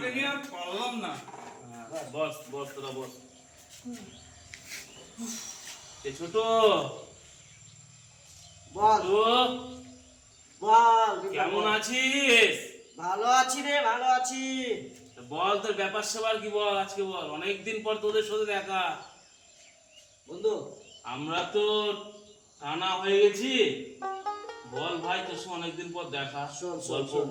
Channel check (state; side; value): identical; both; correlation 1.00